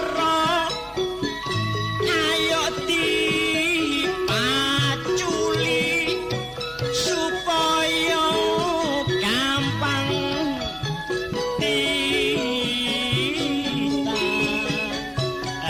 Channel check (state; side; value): identical; both; correlation 1.00